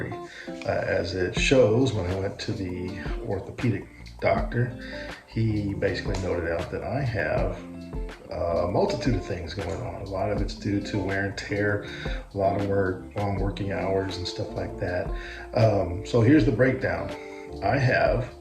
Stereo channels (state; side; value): identical; both; correlation 1.00